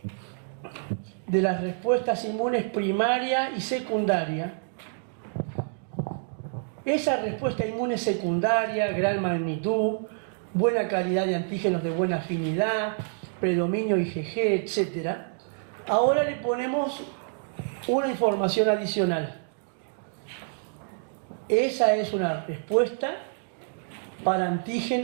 de las respuestas inmunes primaria y secundaria, esa respuesta inmune secundaria, gran magnitud, buena calidad de antígenos de buena afinidad, predominio IgG, etc., ahora le ponemos una información adicional. Esa es una respuesta para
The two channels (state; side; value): silent; left; digital silence